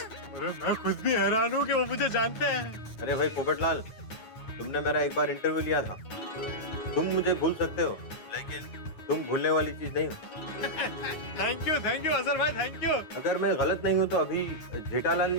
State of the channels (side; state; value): right; late; 9.4 ms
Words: अरे मैं खुद भी हैरान हूँ कि वो मुझे जानते हैं। अरे भाई पोपटलाल, तुमने मेरा एक बार इंटरव्यू लिया था। तुम मुझे भूल सकते हो, लेकिन तुम भूलने वाली चीज नहीं हो। थैंक यू अजहर भाई, थैंक यू। अगर मैं गलत नहीं हूँ तो अभी जेठालाल